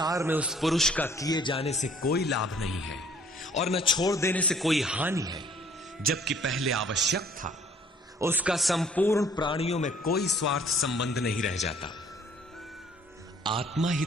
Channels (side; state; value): both; normal; correlation 0.58